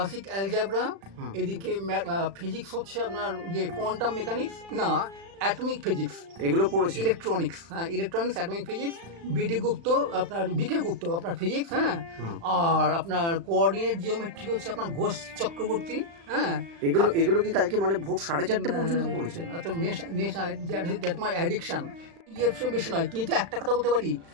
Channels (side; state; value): left; late; 36 ms